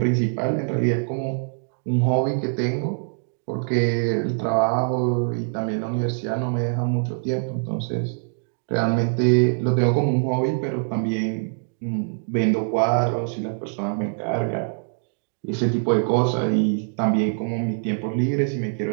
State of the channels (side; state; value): left; silent; digital silence